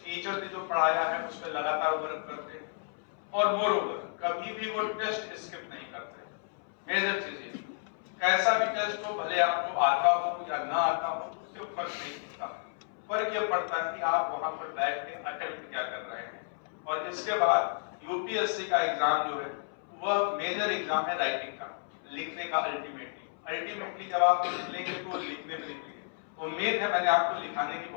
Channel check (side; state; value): right; silent; 57 dB below the other